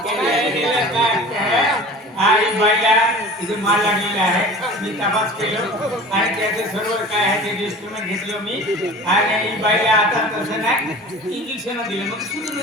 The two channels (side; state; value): both; normal; correlation 0.40